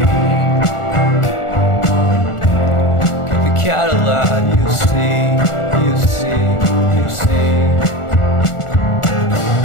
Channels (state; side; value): late; right; 1.4 ms